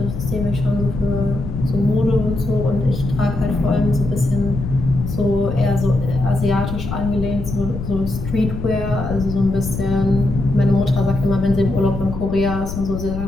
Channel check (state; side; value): noise; left; rumble, 7 dB below the sound